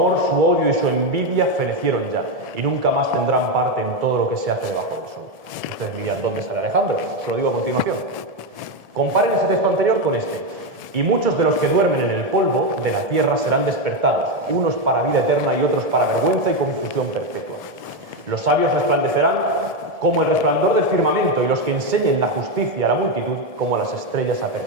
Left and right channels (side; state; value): left; late; 1.7 ms